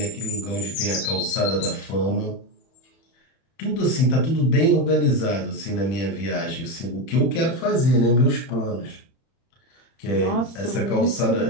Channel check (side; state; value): right; late; 31 ms